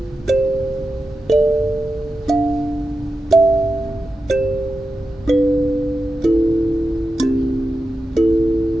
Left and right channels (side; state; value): both; normal; correlation 0.91